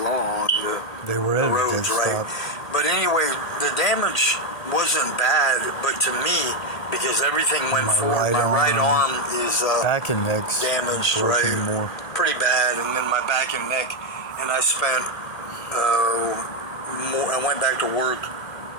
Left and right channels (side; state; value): right; late; 1.7 ms